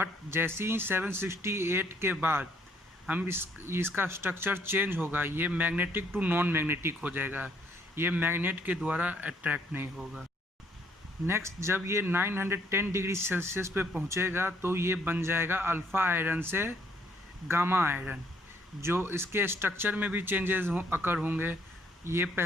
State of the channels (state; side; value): normal; both; correlation 0.67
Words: जैसे ही 768 के बाद हम इसका स्ट्रक्चर चेंज होगा, ये मैग्नेटिक टू नॉन मैग्नेटिक हो जाएगा। ये मैग्नेट के द्वारा अट्रैक्ट नहीं होगा। नेक्स्ट जब ये 910 डिग्री सेल्सियस पे पहुंचेगा तो ये बन जाएगा अल्फ़ा आयरन से गामा आयरन, जो इसके स्ट्रक्चर में भी चेंजेस अकर होंगे। ये